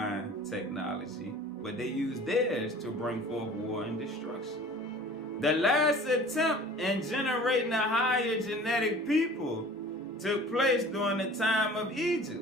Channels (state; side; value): normal; both; correlation 0.45